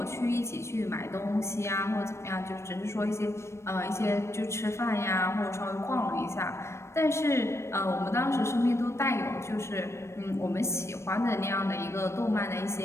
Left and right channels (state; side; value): late; right; 0.13 ms